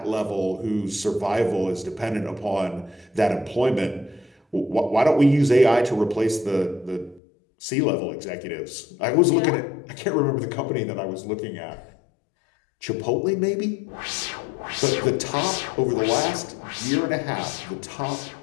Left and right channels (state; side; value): drops out; right; at 7.2 s